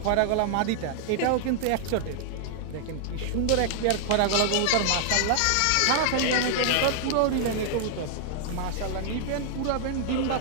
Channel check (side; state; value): both; different; correlation 0.00